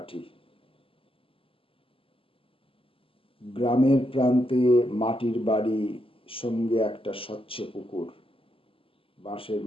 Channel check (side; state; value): right; late; 0.26 ms